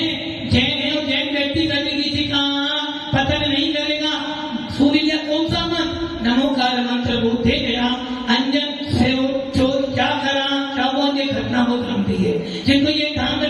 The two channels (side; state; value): both; identical; correlation 1.00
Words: जैन है, और जैन व्यक्ति कभी किसी का पतन नहीं करेगा। सूर्य कौन सा मंत्र, नमोकार मंत्र बोलते गया, अंजन से चोर क्या करा, क्या वो ये घटना बहुत लंबी है, जिनको ये ध्यान